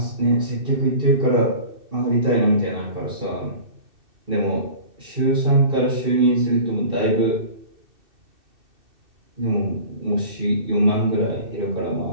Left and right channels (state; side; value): late; left; 2.6 ms